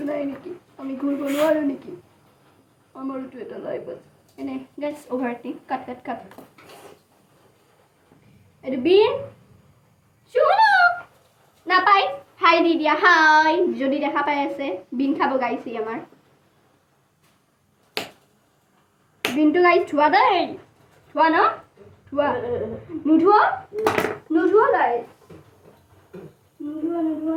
নাই নেকি আমি ঘূৰিব নোৱাৰো নেকি আমাৰতো এটা লাইফ আছে এনে গাইস অভাৰটিং কাট এইটো বিন শুনো নাপাই হাই দি দিয়া হাই যদি দেখা পাই আছে বিন খাব গাইছি আমাৰ বিনটো গাইছ ধোৱা দেই ধোৱা ন ধোৱা নুধোৱা গাইছ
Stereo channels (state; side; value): identical; both; correlation 1.00